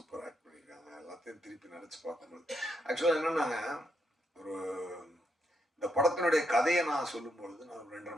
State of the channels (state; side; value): normal; both; correlation 0.78